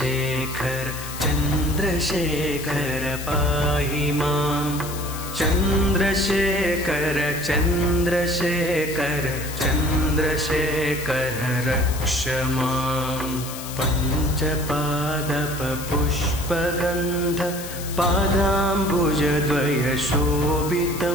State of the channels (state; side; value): noise; left; hiss, 11 dB below the sound